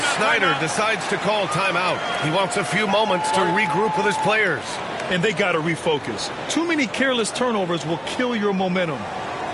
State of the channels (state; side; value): identical; both; correlation 1.00